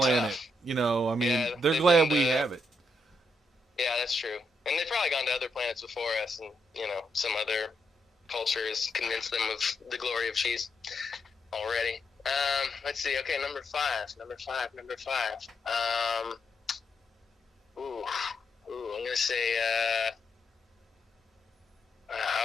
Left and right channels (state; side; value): normal; both; correlation 0.80